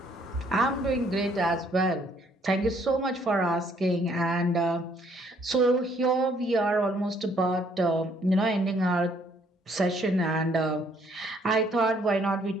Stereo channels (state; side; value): normal; both; correlation 0.65